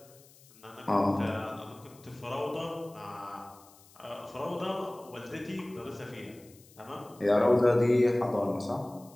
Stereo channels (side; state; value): left; noise; hiss, 25 dB below the sound